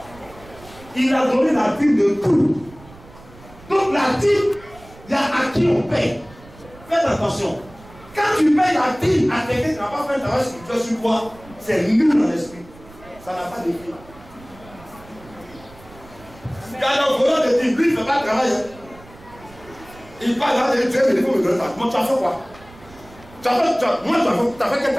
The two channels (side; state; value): right; noise; rumble, 22 dB below the sound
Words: Il a donné la dîme de tout. Donc la dîme, il y a à qui on paye. Faites attention. Quand tu payes la dîme à quelqu'un qui n'a pas fait un travail spirituel sur toi, c'est nul dans l'esprit. Ça n'a pas d'effet. Quand le volant de dîme, lui, il ne fait pas le travail. Il parle là, il dit, il faut me donner ça. Moi, tu as fait quoi? Tu as fait quel